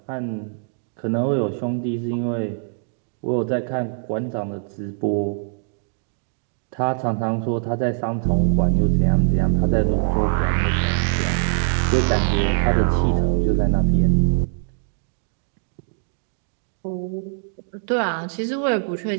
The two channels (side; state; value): left; silent; digital silence